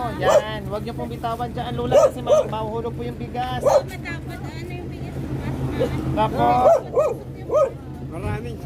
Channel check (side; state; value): both; identical; correlation 1.00